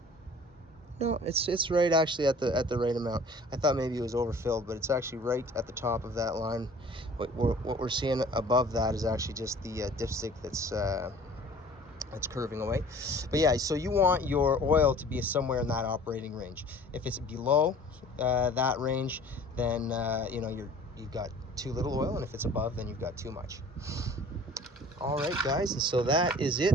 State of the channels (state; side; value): normal; both; correlation 0.48